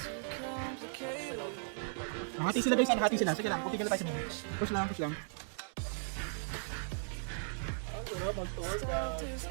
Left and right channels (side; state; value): left; silent; digital silence